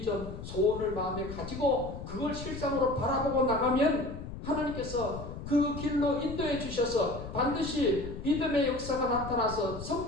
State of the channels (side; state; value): left; noise; rumble, 10 dB below the sound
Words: 소원을 마음에 가지고 그걸 실상으로 바라보고 나가면 하나님께서 그 길로 인도해 주셔서 반드시 믿음의 역사가 나타나서